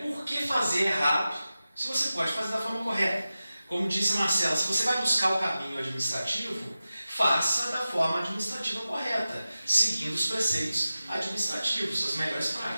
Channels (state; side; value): inverted; both; correlation -0.94